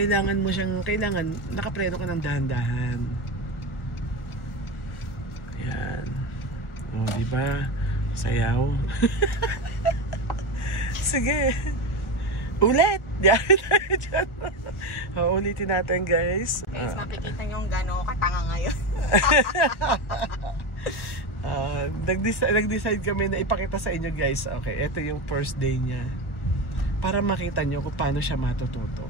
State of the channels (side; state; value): right; late; 1.4 ms